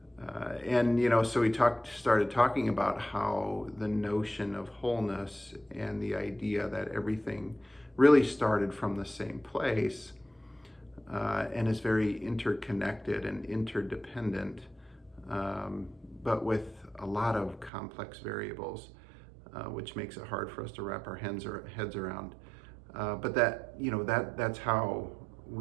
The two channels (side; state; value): left; drops out; at 17.7 s